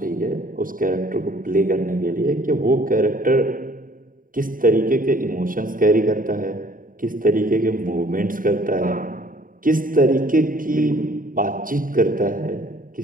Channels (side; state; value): left; late; 0.40 ms